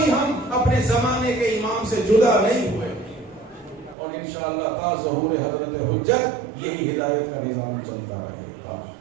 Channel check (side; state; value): left; drops out; at 4.0 s